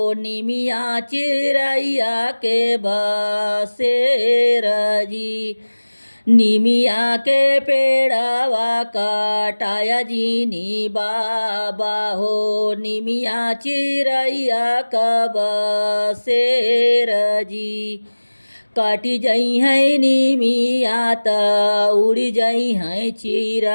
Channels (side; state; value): both; inverted; correlation -1.00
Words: निमिया चिरैया के बसेर जी। निमिया के पेड़ावा कटाया जीनी बाबा हो। निमिया चिरैया का बसेर जी। काटी जई है निमिया त उड़ी जई है